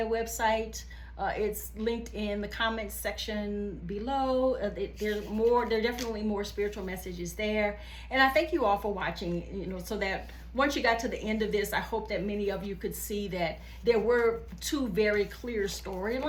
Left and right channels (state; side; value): identical; both; correlation 1.00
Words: website. It's linked in the comments section below. There are definitely more spiritual messages there. And I thank you all for watching, you know, so that once you got to the end of this, I hope that many of you could see that there were 2 very clear